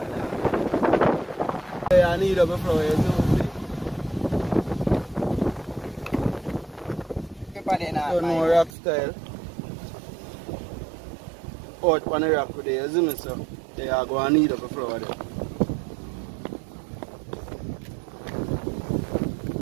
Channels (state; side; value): drops out; left; at 8.7 s